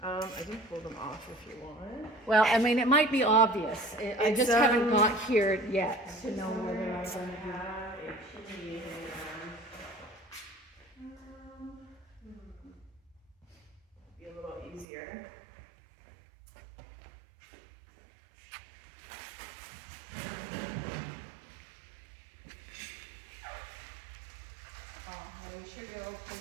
I can pull them off if you want. Well, I mean, it might be obvious. I It's, just haven't got here yet to know whether I'm gonna do. Have a chimney be a little easier. We should go pull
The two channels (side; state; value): left; drops out; at 14.9 s